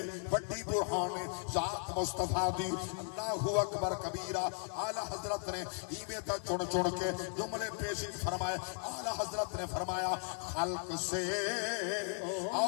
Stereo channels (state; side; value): silent; right; 53 dB below the other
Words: بڑی برہان ہے ذات مصطفیٰ دی اللہ اکبر کبیرہ اعلی حضرت نے ایویں تا چن چن کے جملے پیش فرمائے اعلی حضرت نے فرمایا خلق سے